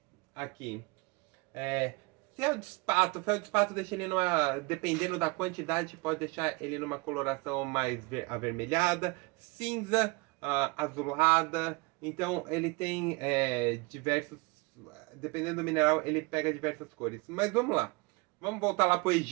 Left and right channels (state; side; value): quieter; left; 26.2 dB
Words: Aqui. Feldespato deixa ele numa... Dependendo da quantidade, pode deixar ele numa coloração mais avermelhada, cinza, azulada. Então, ele tem diversos... Dependendo do mineral, ele pega diversas cores. Mas vamos lá. Vamos voltar lá para o